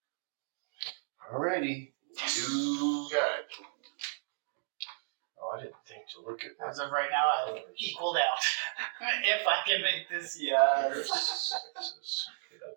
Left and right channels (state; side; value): silent; left; digital silence